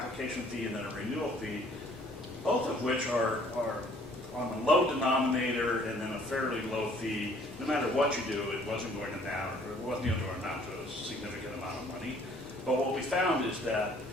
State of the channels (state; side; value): normal; both; correlation 0.58